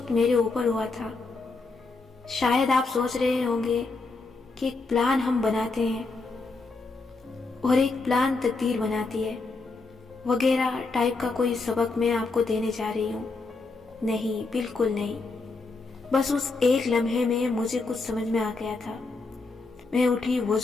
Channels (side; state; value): right; quieter; 3.8 dB